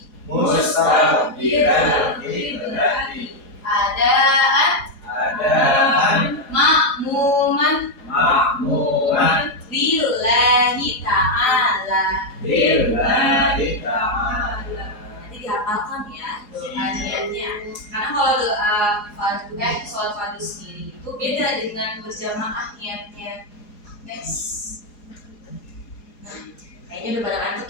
Adaan berbeda dengan berjamaah niatnya. Next. Nah, kayaknya udah pada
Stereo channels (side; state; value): right; late; 4.8 ms